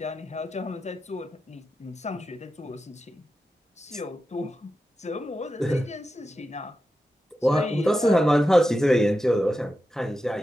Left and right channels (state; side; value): normal; both; correlation 0.90